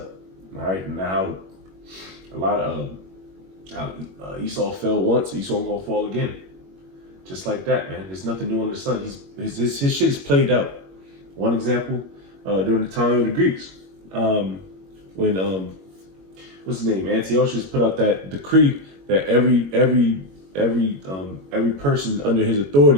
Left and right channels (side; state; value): left; late; 21 ms